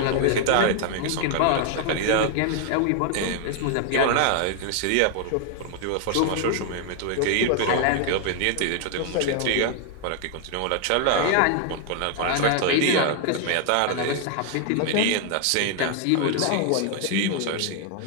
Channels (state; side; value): different; both; correlation 0.00